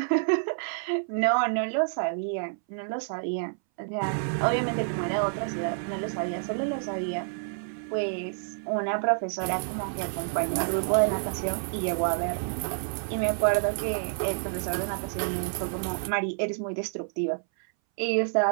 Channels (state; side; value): silent; left; 59 dB below the other